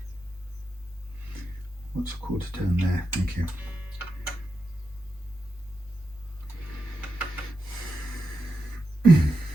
What's a quarter turn there? Thank you.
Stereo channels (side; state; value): both; normal; correlation 0.88